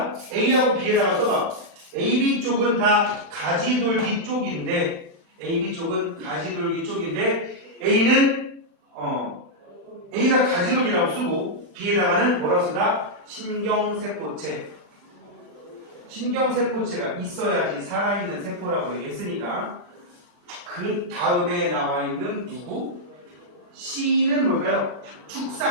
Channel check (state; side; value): late; left; 36 ms